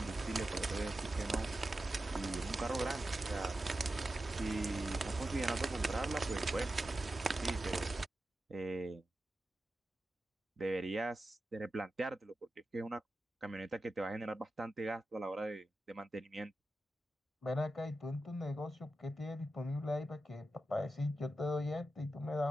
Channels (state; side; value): normal; both; correlation 0.91